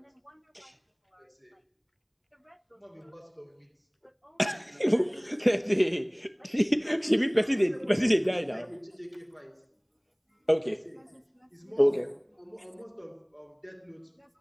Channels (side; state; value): both; identical; correlation 1.00